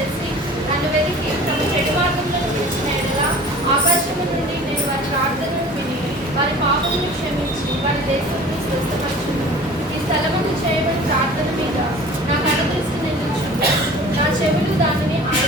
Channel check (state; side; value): normal; both; correlation 0.43